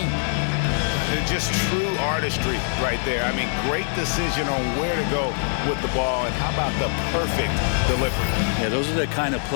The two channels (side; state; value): right; silent; 60 dB below the other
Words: Just true artistry right there. I mean, great decision on where to go with the ball, and how about the perfect delivery? Yeah, those are the kind of